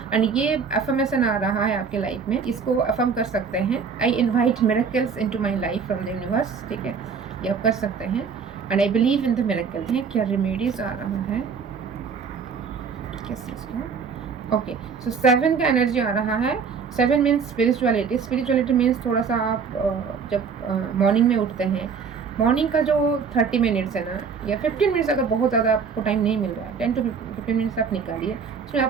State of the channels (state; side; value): quieter; left; 5.8 dB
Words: एंड ये अफर्मेशन आ रहा है आपके लाइफ में, इसको अफर्म कर सकते हैं, I invite miracles into my life from the universe, ठीक है, ये आप कर सकते हैं। And I believe in the miracle है। क्या रेमेडीज आ रहा है किस चीज़ का? ओके, सो 7 का एनर्जी आ रहा है। 7 मीन्स स्पिरिचुअलिटी। स्पिरिचुअलिटी मीन्स थोड़ा सा आप जब मॉर्निंग में उठते हैं, मॉर्निंग का जो 30 मिनट्स है ना, या 15 मिनट्स, अगर बहुत ज़्यादा आपको टाइम नहीं मिल रहा है, 10 to 15 मिनट्स आप निकालिए, उसमें